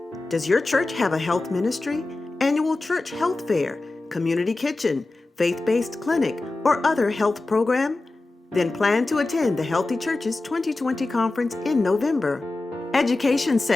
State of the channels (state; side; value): quieter; right; 3.1 dB